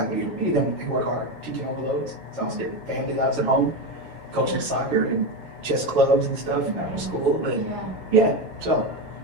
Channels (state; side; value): late; left; 7.8 ms